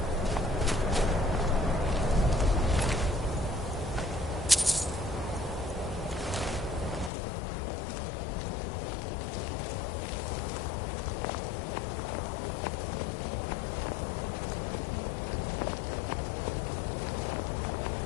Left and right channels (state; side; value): drops out; right; at 7.1 s